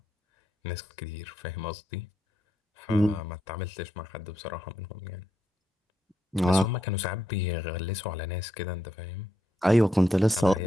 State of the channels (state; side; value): normal; both; correlation 0.79